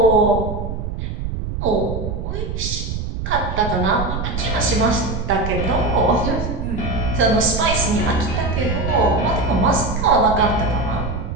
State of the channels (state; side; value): noise; right; rumble, 4 dB below the sound